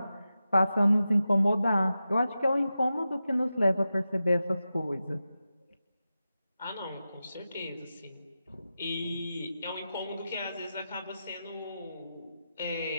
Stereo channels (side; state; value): both; inverted; correlation -0.92